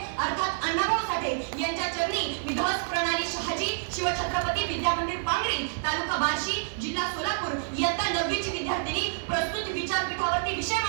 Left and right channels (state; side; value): silent; left; 59 dB below the other